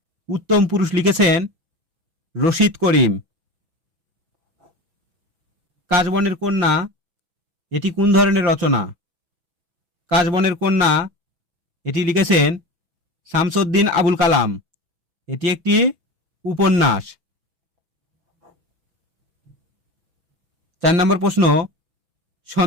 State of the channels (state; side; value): late; left; 6.1 ms